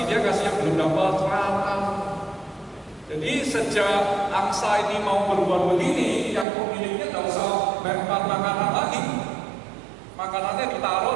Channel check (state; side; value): drops out; left; at 6.5 s